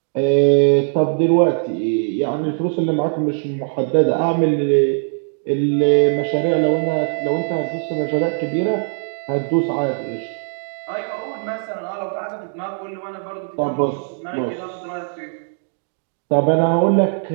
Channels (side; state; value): left; silent; digital silence